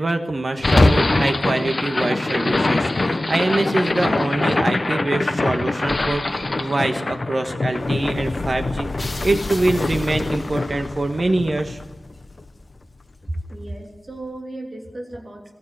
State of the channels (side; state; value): both; normal; correlation 0.95